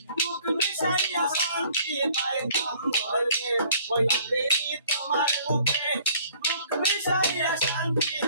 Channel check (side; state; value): both; inverted; correlation -0.56